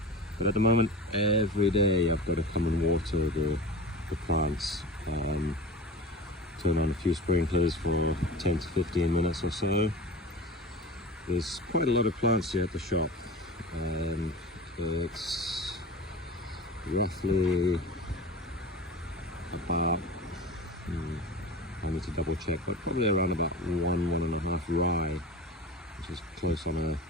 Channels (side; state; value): both; normal; correlation 0.32